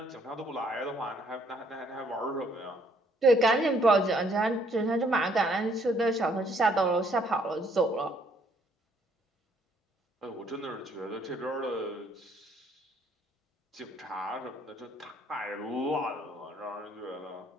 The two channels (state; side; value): normal; both; correlation 0.65